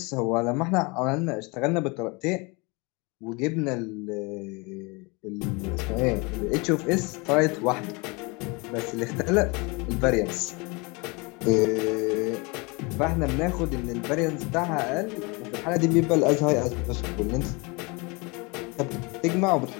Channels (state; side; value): quieter; right; 28.2 dB